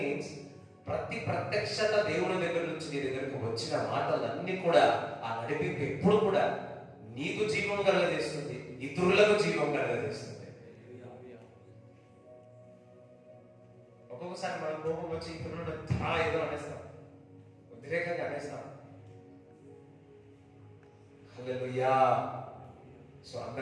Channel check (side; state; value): both; identical; correlation 1.00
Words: ప్రతి ప్రత్యక్షత దేవుని దగ్గర నుంచి నీ దగ్గరకు వచ్చిన మాటలన్నీ కూడా, ఆ నడిపింపు ఎప్పుడు కూడా నీకు జీవం కలగజేస్తుంది, ఇతరులకు జీవం కలగజేస్తుంది. ఒక్కొక్కసారి మన కోపం వచ్చి ఇతరులను ఏదో అనేస్తాం, వ్యతిరేకంగా అనేస్తాం. హల్లెలూయా. సో